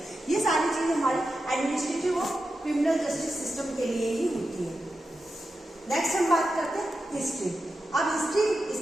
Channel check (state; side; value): normal; both; correlation 0.90